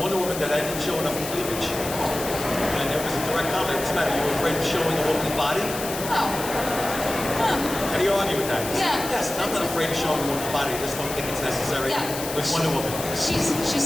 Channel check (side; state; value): left; noise; hiss, 8 dB below the sound